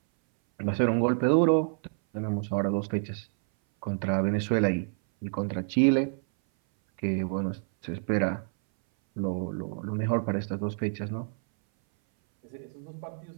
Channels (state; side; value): silent; left; 58 dB below the other